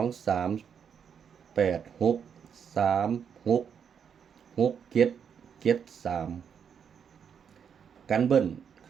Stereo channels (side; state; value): left; quieter; 7.5 dB